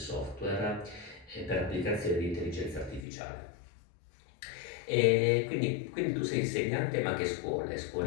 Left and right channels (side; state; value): right; drops out; at 3.0 s